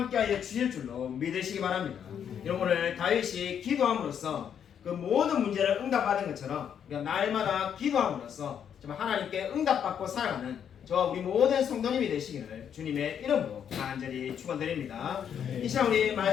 주실 줄로 믿으시기 바랍니다. 여러분 오늘 다윗이 기도함으로써 그 모든 문제를 응답받은 것처럼 우리가 날마다 기도함으로써 정말 하나님께 응답받고 살아가는 저와 우리 모든 성도님이 되시기를 주님의 이름으로 간절히 축원드립니다. 이 시간 우리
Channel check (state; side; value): quieter; right; 8.5 dB